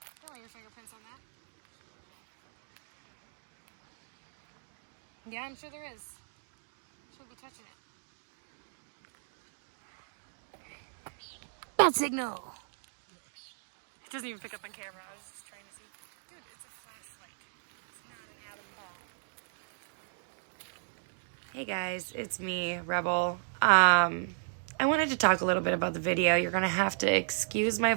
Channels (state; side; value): silent; left; digital silence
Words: Don't leave your fingerprints on that. Yeah, I'm sure there is. Shouldn't be touching it. Bad signal! It doesn't even pick up on camera. I was just trying to see. Dude, it's a flashlight. It's not an atom bomb. Hey guys, it's me, Rebel. I wanted to talk a little bit about the video. You're gonna have to excuse my